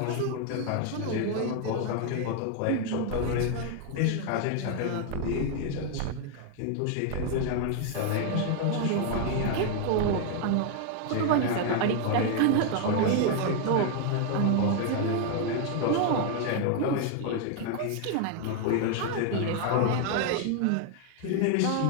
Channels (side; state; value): both; different; correlation 0.00